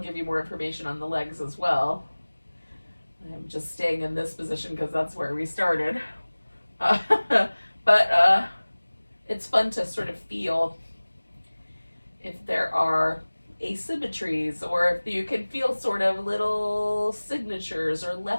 you more information on the legs as well. I'm just staying in this position because that's where we started. But it's fun to sort of feel if there are asymmetries, or if you can feel sort of little signatures or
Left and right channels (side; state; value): both; inverted; correlation -1.00